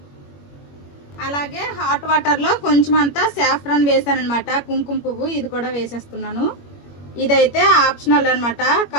అలాగే హాట్ వాటర్ లో కొంచెం అంతా సాఫ్రాన్ వేసాను అనమాట, కుంకుమ పువ్వు. ఇది కూడా వేసేస్తున్నాను. ఇదైతే ఆప్షనల్ అనమాట,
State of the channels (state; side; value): late; right; 21 ms